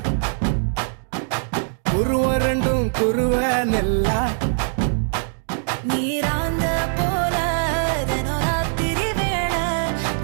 குருவ ரெண்டும் குருவ நெல்லா நீராங்க போல ராத்திரி வேள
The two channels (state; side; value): silent; left; digital silence